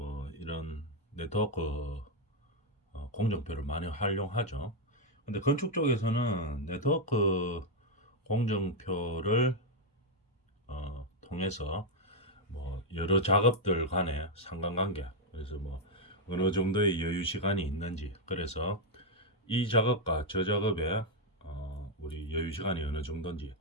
이런 네트워크 공정표를 많이 활용하죠. 근데 건축 쪽에서는 네트워크 공정표를 통해서 뭐 여러 작업들 간의 상관관계, 그래서 뭐 어느 정도의 여유 시간이 있는지, 그래서 이 작업과 저 작업에 우리 여유 시간이 어느 정도인지,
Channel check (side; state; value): both; normal; correlation 0.01